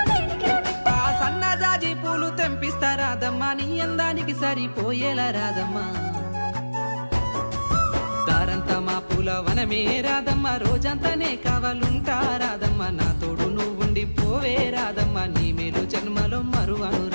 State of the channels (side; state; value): both; inverted; correlation -1.00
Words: సన్నజాజి పూలు తెంపిస్తా రాదమ్మ, నీ అందానికి సరిపోయేలా రాదమ్మ. దారంతా మా పూలవనమే రాదమ్మ, రోజంతానే కావాలుంటా రాదమ్మ, నా తోడు నువ్వుండి పోవే రాదమ్మ, నీ మేలు జన్మలో మరువను